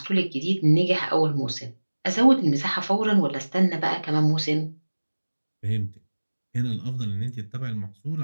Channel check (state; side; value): inverted; both; correlation -1.00